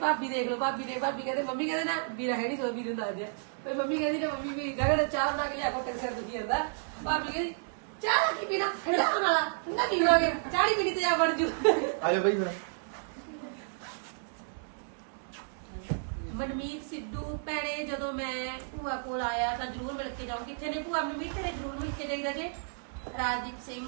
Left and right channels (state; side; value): silent; left; digital silence